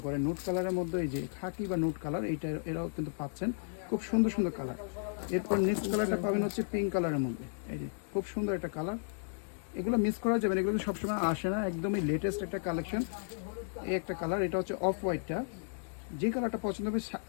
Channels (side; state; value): right; silent; digital silence